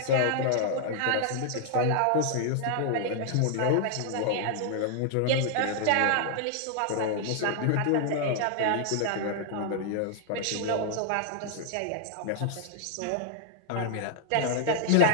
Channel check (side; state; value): both; different; correlation 0.00